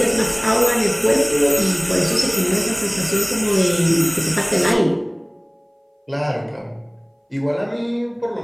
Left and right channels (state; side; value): identical; both; correlation 1.00